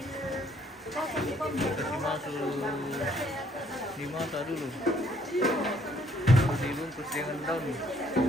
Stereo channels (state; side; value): normal; both; correlation 0.65